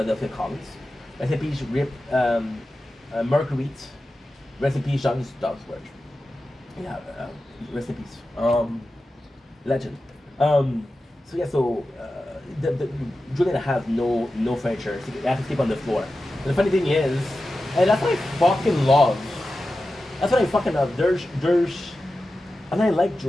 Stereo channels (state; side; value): normal; both; correlation 0.93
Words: Collins. Rest in peace, Marguerite. Rest in peace, John Dogsworth. Yeah, rest in peace. Legend. The Julian has no furniture. So they have to sleep on the floor. And the funny thing is, and that's what I fucking love. That's what I fucking love. And I like